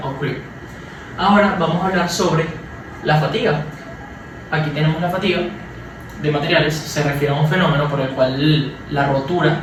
o creep. Ahora vamos a hablar sobre la fatiga. Aquí tenemos la fatiga de materiales. Se refiere a un fenómeno por el cual la rotura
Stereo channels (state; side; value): identical; both; correlation 1.00